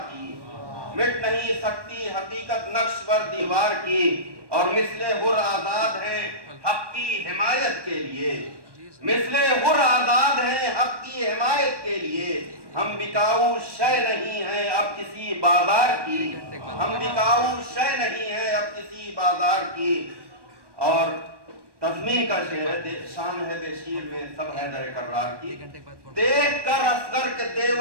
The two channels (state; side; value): late; left; 1.1 ms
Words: کی، مٹ نہیں سکتی حقیقت نقش بر دیوار کی، اور مثل حر آزاد ہیں حق کی حمایت کے لیے، مثل حر آزاد ہیں حق کی حمایت کے لیے، ہم بکاؤ شے نہیں ہیں اب کسی بازار کی، ہم بکاؤ شے نہیں ہیں اب کسی بازار کی۔ اور تضمین کا شعر ہے، شان ہے بے شیر میں سب حیدر کرار کی، دیکھ کر اصغر کے